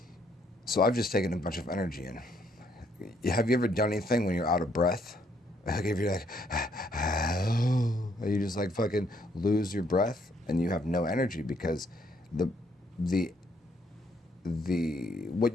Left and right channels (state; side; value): normal; both; correlation 0.70